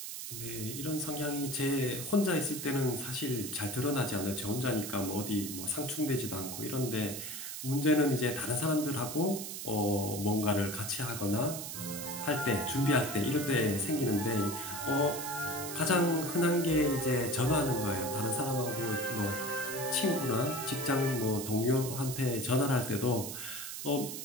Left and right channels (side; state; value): right; noise; hiss, 7 dB below the sound